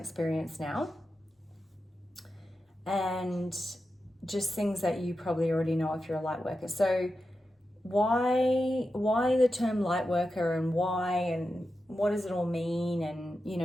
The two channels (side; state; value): both; normal; correlation 0.90